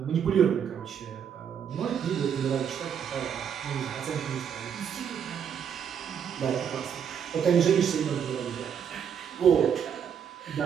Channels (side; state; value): left; quieter; 8.0 dB